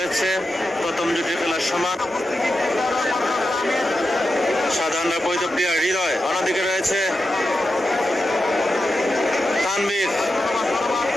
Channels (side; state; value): both; normal; correlation 0.89